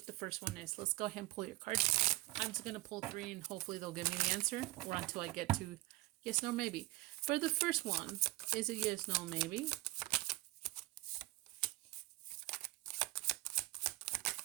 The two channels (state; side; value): quieter; left; 19.3 dB